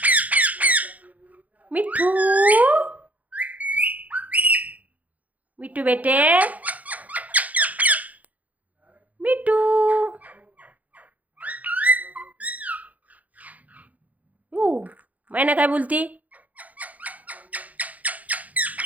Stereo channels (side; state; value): left; late; 0.075 ms